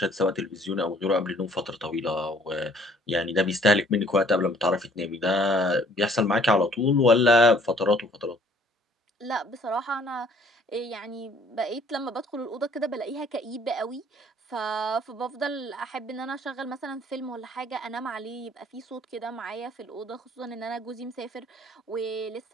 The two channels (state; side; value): normal; both; correlation 0.58